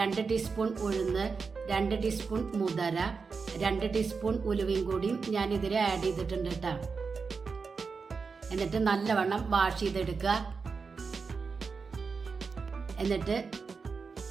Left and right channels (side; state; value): left; quieter; 5.0 dB